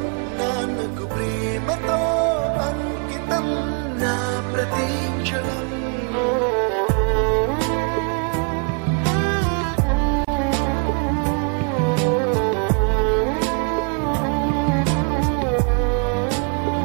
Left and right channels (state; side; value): quieter; left; 36.2 dB